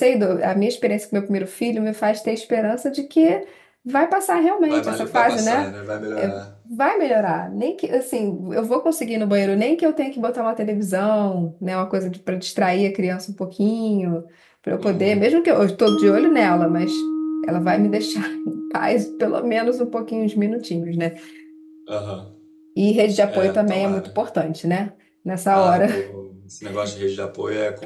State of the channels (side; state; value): both; identical; correlation 1.00